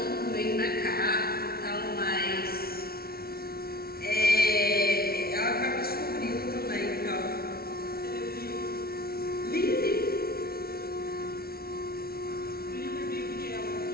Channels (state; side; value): late; right; 0.44 ms